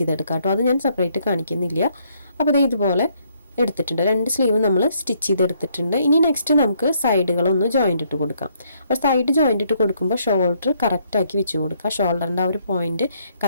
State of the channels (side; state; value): both; inverted; correlation -0.70